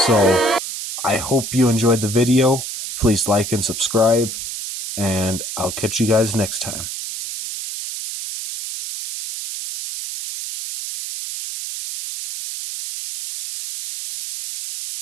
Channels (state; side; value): noise; right; hiss, 7 dB below the sound